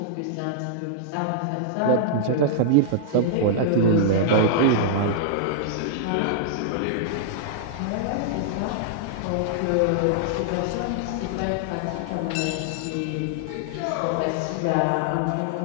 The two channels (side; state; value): both; different; correlation -0.01